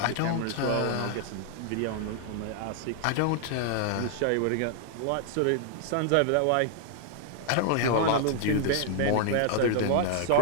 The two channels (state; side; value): different; both; correlation 0.00